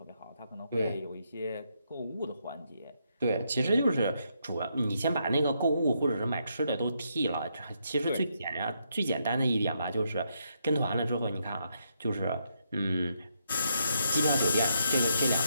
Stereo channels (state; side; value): inverted; both; correlation -0.78